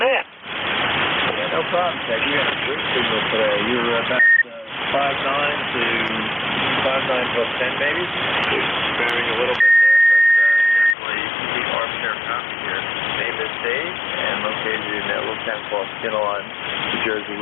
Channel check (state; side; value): drops out; right; at 11.0 s